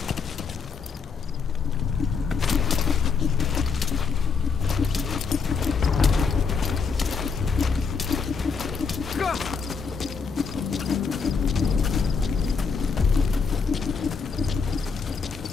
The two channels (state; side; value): quieter; right; 5.4 dB